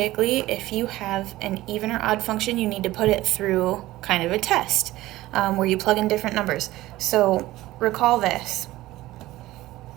if you have an even or odd function, you need to put it through kind of a test where you plug in different numbers. So recall this.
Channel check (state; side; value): quieter; left; 17.0 dB